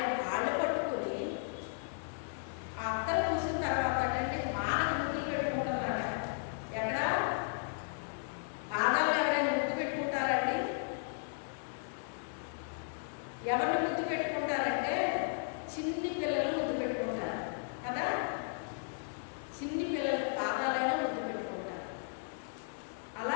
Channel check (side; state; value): right; silent; digital silence